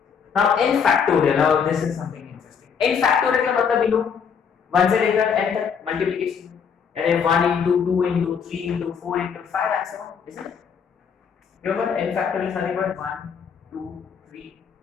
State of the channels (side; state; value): right; quieter; 6.8 dB